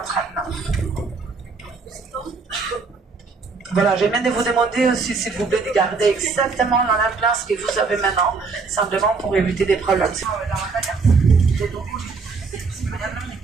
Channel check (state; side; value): quieter; left; 4.6 dB